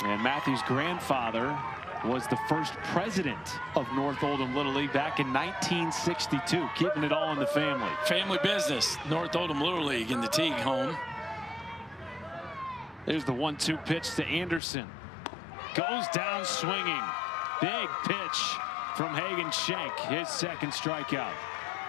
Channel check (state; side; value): drops out; right; at 14.6 s